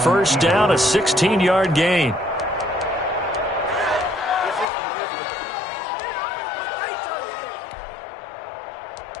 down, a 16-yard gain.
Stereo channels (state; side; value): drops out; right; at 4.7 s